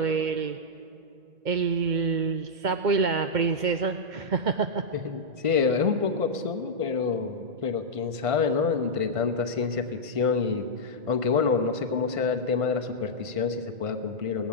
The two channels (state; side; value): late; left; 1.5 ms